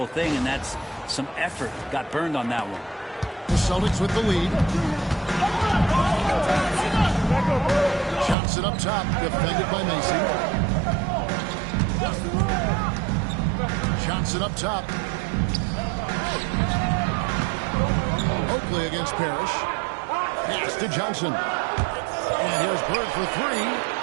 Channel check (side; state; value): left; drops out; at 8.3 s